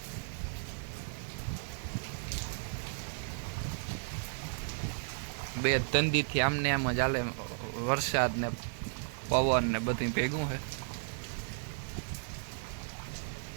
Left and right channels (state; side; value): silent; left; 55 dB below the other